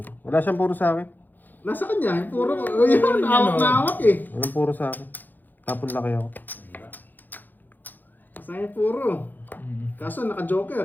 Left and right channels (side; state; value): right; late; 0.087 ms